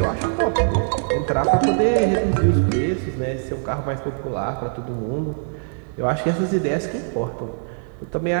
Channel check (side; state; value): left; silent; 64 dB below the other